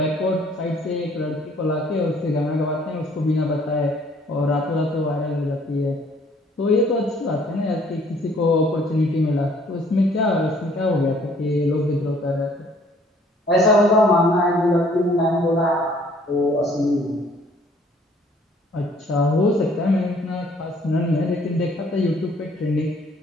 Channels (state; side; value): normal; both; correlation 0.59